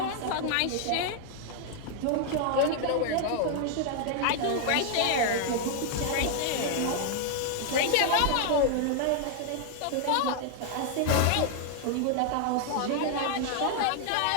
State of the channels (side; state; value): both; different; correlation 0.00